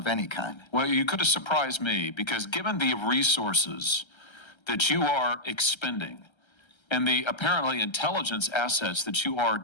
any kind. Well, you could have surprised me, because given the resources that you are expending and the apparently intelligence assets that you are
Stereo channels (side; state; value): right; late; 1.3 ms